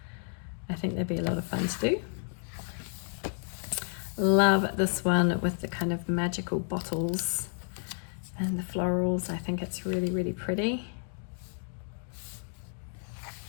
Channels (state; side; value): silent; right; 57 dB below the other